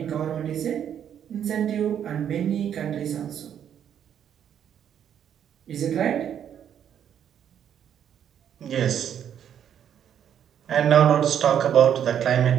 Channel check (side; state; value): left; quieter; 9.2 dB